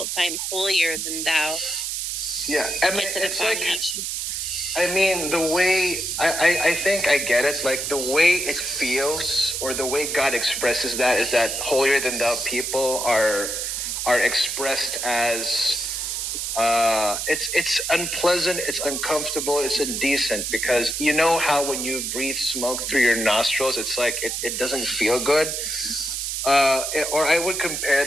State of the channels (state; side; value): noise; right; hiss, 2 dB below the sound